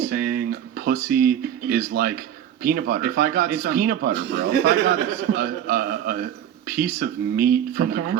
saying pussy is like Peanut butter. If I got it's some- peanut butter, bro. if I got a piece of meat from the Okay.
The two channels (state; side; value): quieter; left; 10.1 dB